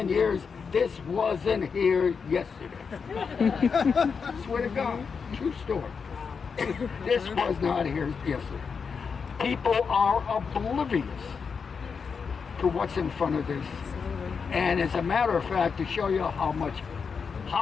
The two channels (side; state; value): right; quieter; 5.7 dB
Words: years. This wasn't here yesterday." Swear to God, true story. This was not here yesterday. People are oblivious to what's in front of this. And as a matter of fact, to show you